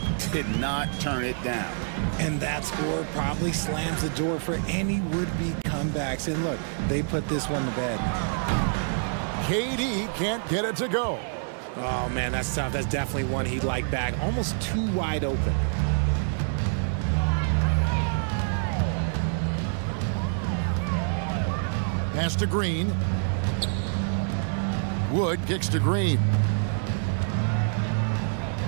did not turn it down. And that score probably slams the door for any would-be comebacks. And look, they put this one to bed. KD can't get it to go. Oh, man, that's tough. That's definitely one he'd like back. Almost too wide open. Pass to Green. Wood kicks to Green.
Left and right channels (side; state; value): left; silent; digital silence